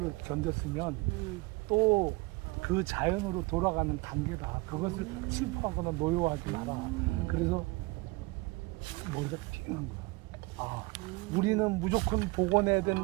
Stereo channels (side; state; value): left; quieter; 24.0 dB